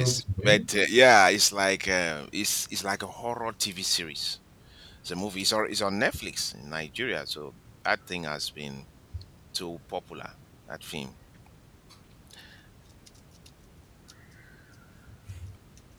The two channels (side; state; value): both; identical; correlation 1.00